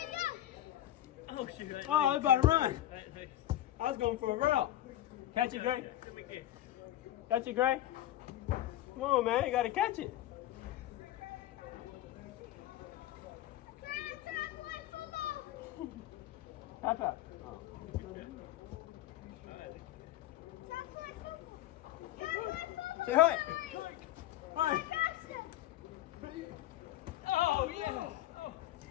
Oh, shoot. Oh, I was about to run. I was going for a route. Catch it, Gray. Catch it, Gray. Come on, man. You got to catch it. Papa. Oh. Say hi. Hi. Oh, yeah. Oh.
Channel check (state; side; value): quieter; right; 13.8 dB